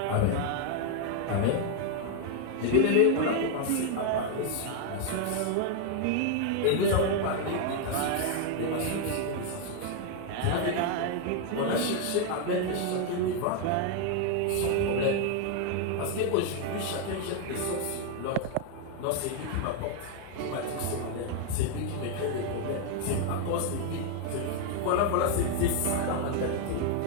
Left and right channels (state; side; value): different; both; correlation 0.00